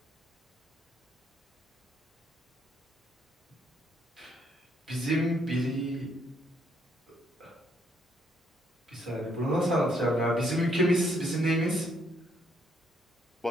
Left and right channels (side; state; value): both; normal; correlation 0.70